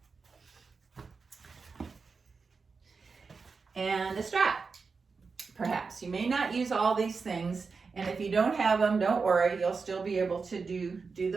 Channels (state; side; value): quieter; left; 4.8 dB